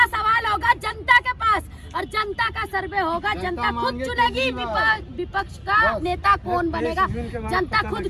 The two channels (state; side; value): identical; both; correlation 1.00